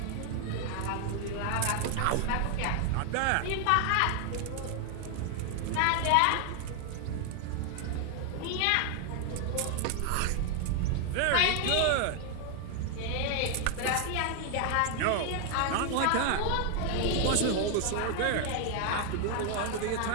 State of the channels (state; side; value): different; both; correlation 0.00